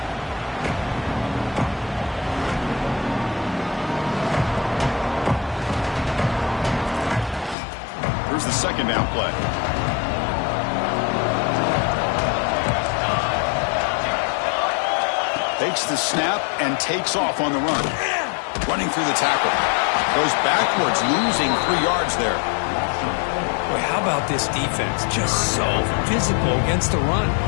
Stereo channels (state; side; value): drops out; right; at 7.6 s